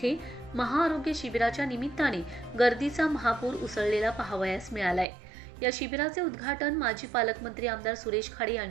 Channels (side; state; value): left; drops out; at 5.1 s